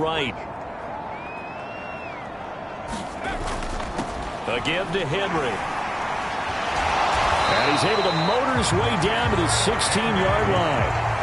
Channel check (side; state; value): both; identical; correlation 1.00